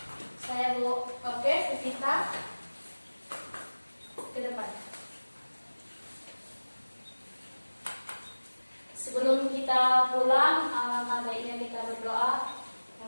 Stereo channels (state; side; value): inverted; both; correlation -1.00